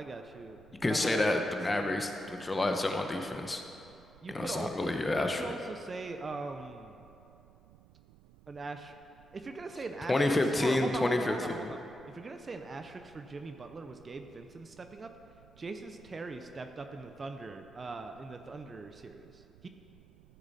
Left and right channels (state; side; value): noise; right; rumble, 23 dB below the sound